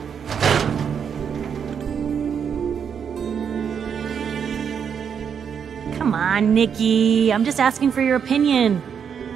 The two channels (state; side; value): quieter; left; 7.3 dB